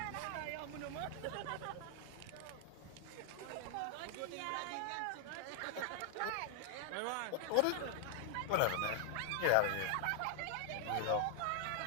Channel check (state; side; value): different; both; correlation 0.00